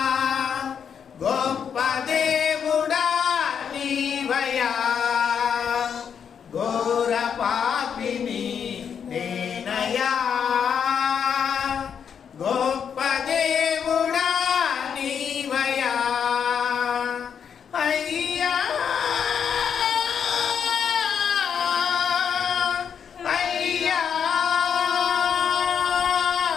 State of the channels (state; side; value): quieter; right; 7.5 dB